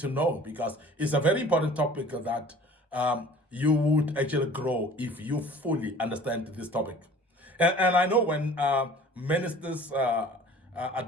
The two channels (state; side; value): normal; both; correlation 0.47